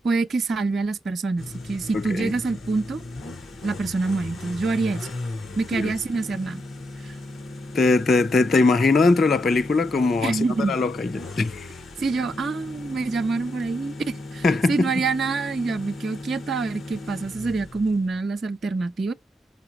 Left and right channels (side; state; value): both; normal; correlation 0.81